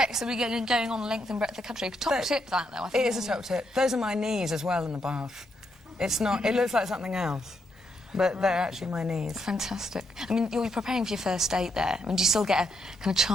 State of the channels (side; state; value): both; normal; correlation 0.78